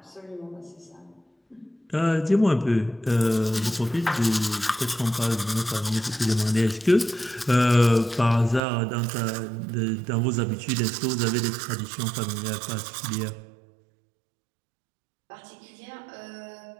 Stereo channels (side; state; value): left; drops out; at 8.6 s